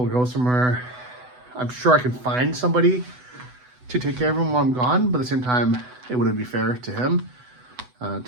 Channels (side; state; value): left; late; 8.0 ms